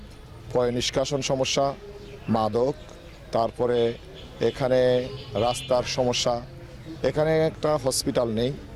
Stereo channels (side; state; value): both; identical; correlation 1.00